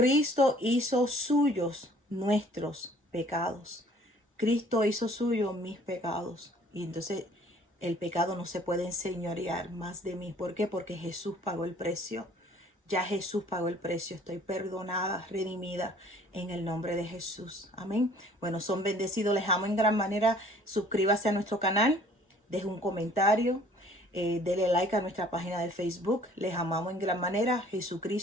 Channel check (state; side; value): normal; both; correlation 0.55